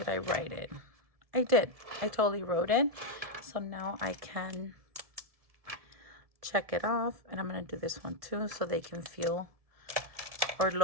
I write it? I did. I totally wrote it. So now I can check it off. And I'm going to do this one too so they can feel or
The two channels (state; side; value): late; left; 1.7 ms